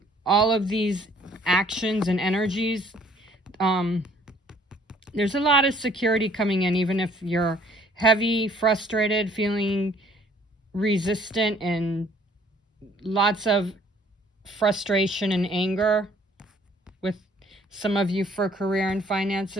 all of these actions and energies. There's a lot of security coming in, even if you're heavy, frustrated, feeling resistant, and lots of frustration and anger with some of you for career and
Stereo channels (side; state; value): both; normal; correlation 0.59